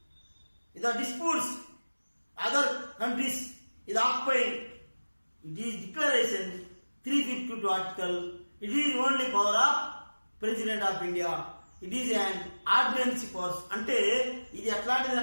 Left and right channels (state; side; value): inverted; both; correlation -1.00